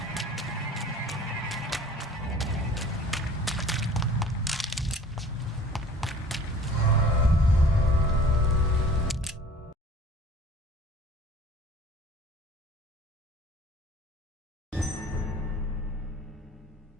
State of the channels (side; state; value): both; normal; correlation 0.48